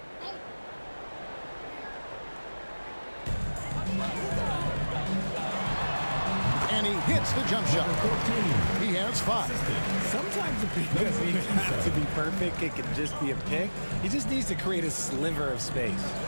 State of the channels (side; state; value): both; inverted; correlation -1.00